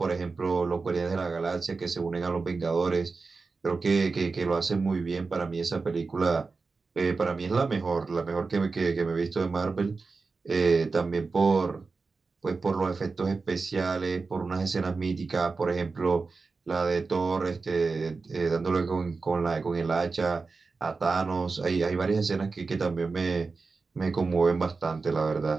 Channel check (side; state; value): left; quieter; 4.2 dB